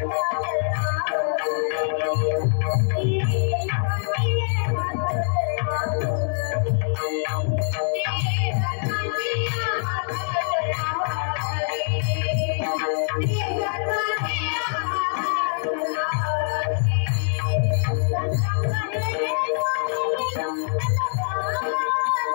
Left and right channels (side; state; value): right; silent; digital silence